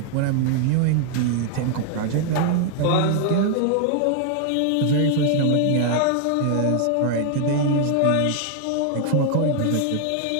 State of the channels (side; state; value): both; different; correlation 0.00